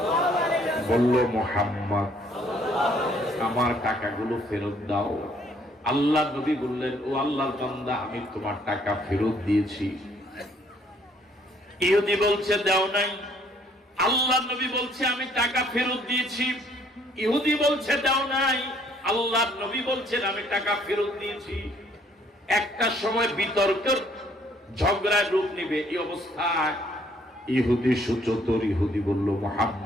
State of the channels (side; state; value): both; normal; correlation 0.63